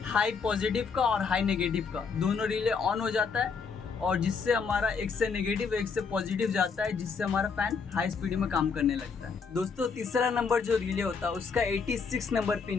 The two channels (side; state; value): right; quieter; 5.5 dB